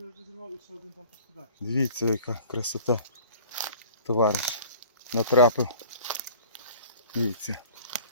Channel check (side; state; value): both; inverted; correlation -0.46